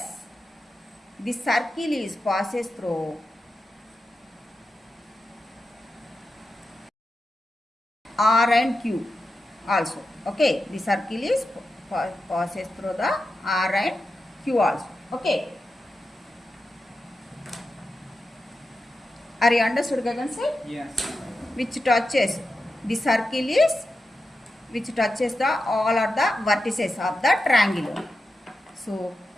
The circle is passes through R and Q also. Okay, the circle is passes through the R and Q also. Okay. Are you understood, Gagan sir? Yes. Which touches the circle is which touches the all of the vertices of the triangle. So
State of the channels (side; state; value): both; normal; correlation 0.90